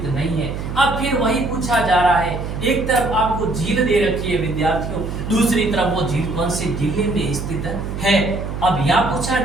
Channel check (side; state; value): right; noise; hum, 6 dB below the sound